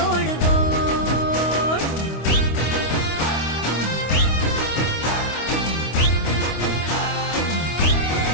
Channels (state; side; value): late; right; 25 ms